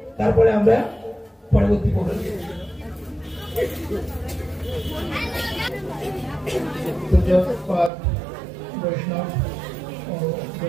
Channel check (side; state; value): left; drops out; at 7.9 s